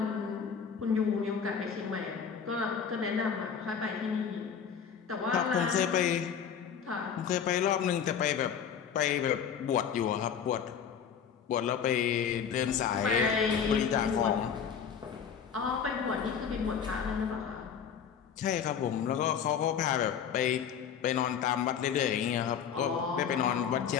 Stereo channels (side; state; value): right; quieter; 7.5 dB